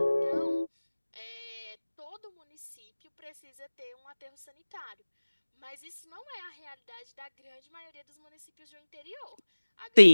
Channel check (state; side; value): inverted; both; correlation -1.00